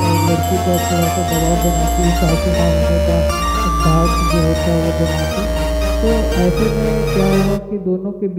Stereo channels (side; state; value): both; identical; correlation 1.00